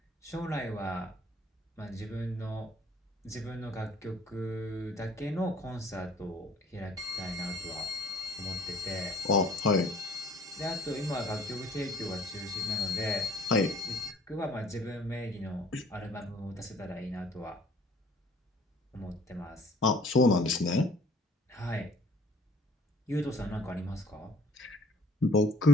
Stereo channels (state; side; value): normal; both; correlation 0.55